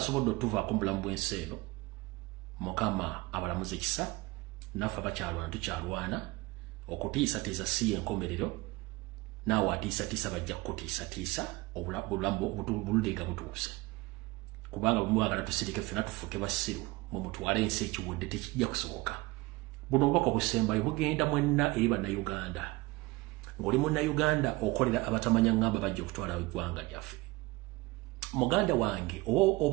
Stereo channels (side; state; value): left; quieter; 21.9 dB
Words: otuvaako mu bulamu bw'ensi eno Mukama abalamuze ekisa naffe abakyalwana tukyalwana okutiisatiisa si y'enkomerero naawe atiisatiisa bajja kutiisatiisa obulamu bululenga butuuse kubanga bwe mwagala tusirike ffenna tufuuke basiru mwe mutwale ensi ekiwedde tekijja kusoboka. Buno obubaka obusembayo bugenda mwenna eri bannayuganda ng'oli munnayuganda okolera abatamanya ngamba bajja okutwala eggwanga lyaffe. Muganda wange